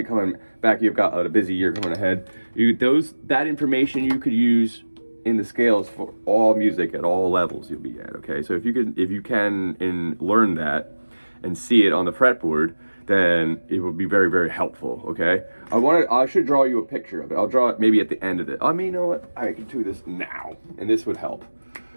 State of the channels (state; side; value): inverted; both; correlation -1.00